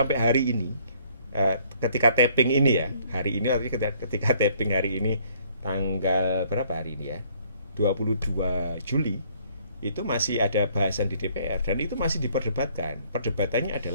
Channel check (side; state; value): both; inverted; correlation -0.62